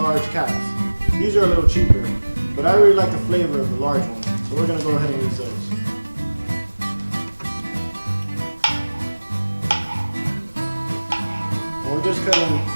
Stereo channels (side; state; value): both; inverted; correlation -1.00